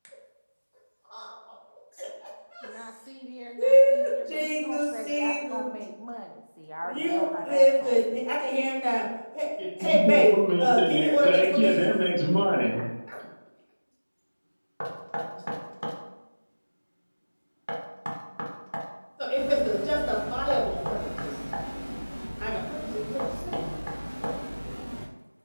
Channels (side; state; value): both; inverted; correlation -1.00